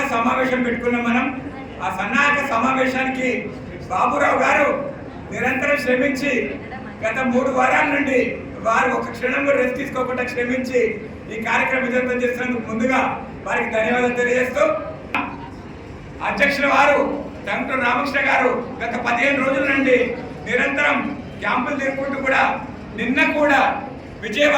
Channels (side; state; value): both; identical; correlation 1.00